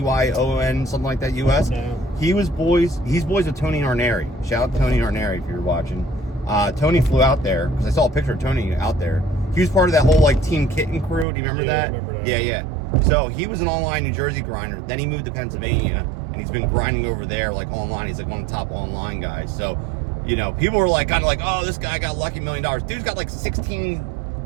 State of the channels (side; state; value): left; drops out; at 11.2 s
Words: something like that, US? No. He's boys with Tony Arneri. Shout out to Tony Arneri if you're watching. Tony flew out there, because I saw a picture of Tony out there. He was part of that whole, like, Team Kitten crew. Do you remember that? I remember that. Yeah. So he was an online New Jersey grinder. Then he moved to Pennsylvania, and he's been grinding over there, like, online. He's like one of the top online guys. So, people were like, kind of like, oh, this guy got lucky $1 million. Dude's got like 16